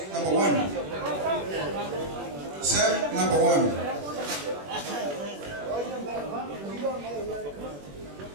number 1. Sam, number 1.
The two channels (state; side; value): late; left; 21 ms